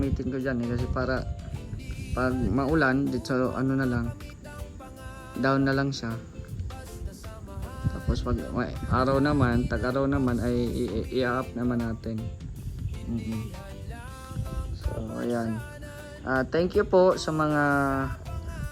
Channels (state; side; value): identical; both; correlation 1.00